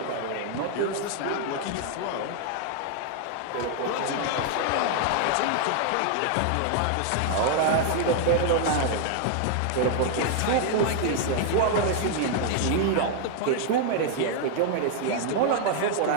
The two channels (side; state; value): both; different; correlation 0.00